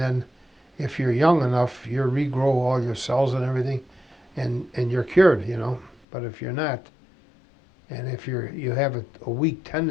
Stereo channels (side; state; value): right; drops out; at 6.0 s